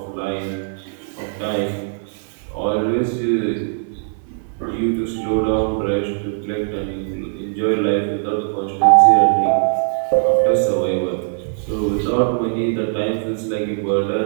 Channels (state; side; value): silent; left; digital silence